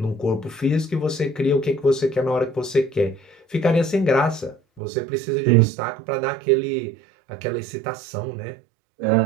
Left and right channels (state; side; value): drops out; left; at 4.8 s